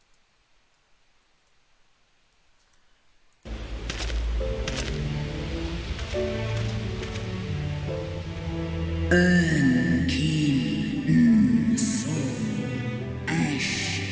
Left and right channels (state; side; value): identical; both; correlation 1.00